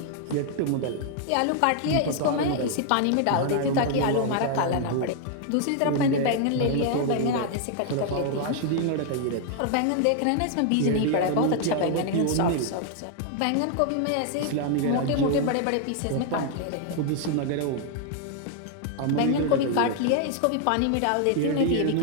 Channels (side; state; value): both; different; correlation 0.00